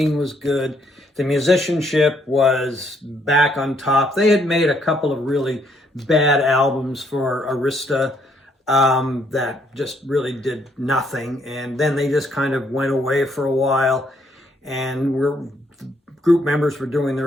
was good, the musicianship was back on top. They had made a couple of really bad albums for Arista that just really did nothing, and then they just kind of went away for a while, and group members were doing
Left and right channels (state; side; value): normal; both; correlation 0.70